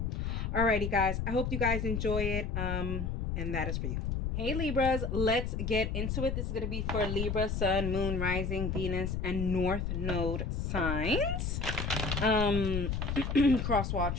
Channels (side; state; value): left; noise; rumble, 1 dB below the sound